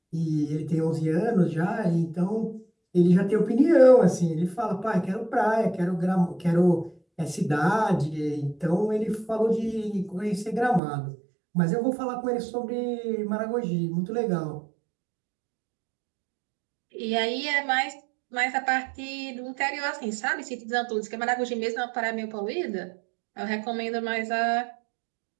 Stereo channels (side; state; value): left; drops out; at 10.8 s